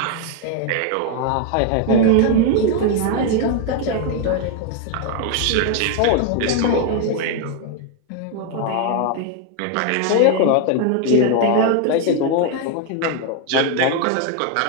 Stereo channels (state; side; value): different; both; correlation 0.01